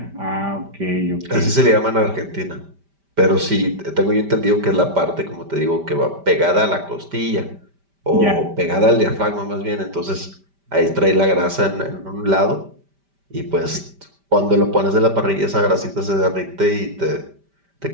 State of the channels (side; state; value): left; late; 5.1 ms